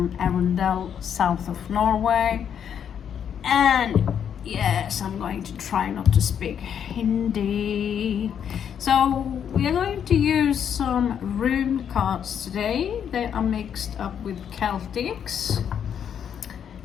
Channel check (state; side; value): quieter; right; 8.4 dB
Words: Arendal, south of Norway, and yes, I'm going to try not to speak Hindi. So we are going to use some rune cards today. They are mixed up with Celtics.